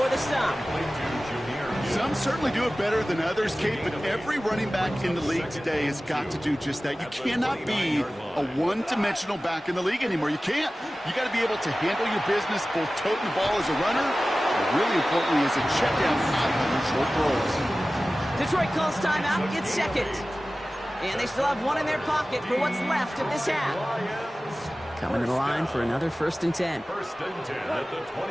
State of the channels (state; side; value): normal; both; correlation 0.96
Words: the stop. Some certainly do it better than others, Kate, but every running back in the league today has got to do just that. You cannot be a one-dimensional back in the league anymore. You can't. You got to be able to handle your business, both toting the ball as a runner, but really importantly as a check down out of short throws. Detroit calls timeout. It's 2nd. And they still have 1 in their pocket for what's left of this half. Coming to the line for another 1st and 10. First and 10 at the